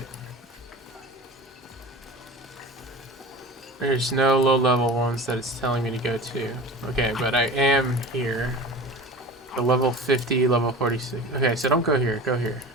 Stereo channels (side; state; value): both; normal; correlation 0.35